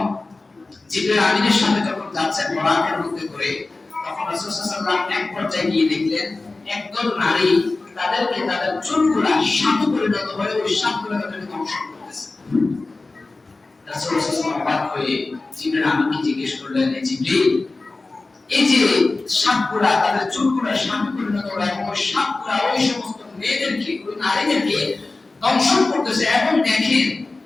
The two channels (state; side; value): quieter; right; 3.4 dB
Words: জিবরাইল আমিনের সাথে যখন যাচ্ছেন বরাকের মধ্যে করে, তখন রাসূল সাল্লাল্লাহু আলাইহি ওয়াসাল্লাম এক পর্যায়ে গিয়ে দেখলেন একদল নারী তাদেরকে তাদের চুলগুলা সাপে পরিণত হয়ে ওই সাপগুলো তাদেরকে ধ্বংস করতেছে। রাসূল সাল্লাল্লাহু আলাইহি ওয়াসাল্লাম অবাক হয়ে জিবরাইল আমিনকে জিজ্ঞেস করলেন, জিবরাইল, এই যে সাপগুলা তাদের চুলগুলা সাপে পরিণত হয় এবং ওই সাপগুলা ওই সমস্ত মেয়েদেরকে, ওই নারীদেরকে দংশন করতেছে, এবং দেখেন